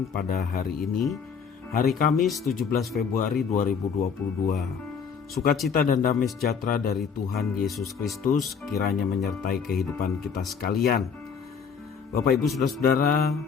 pada hari ini, hari Kamis 17 Februari 2022. Sukacita dan damai sejahtera dari Tuhan Yesus Kristus kiranya menyertai kehidupan kita sekalian. Bapak Ibu Saudara-saudara,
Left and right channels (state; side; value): quieter; right; 6.3 dB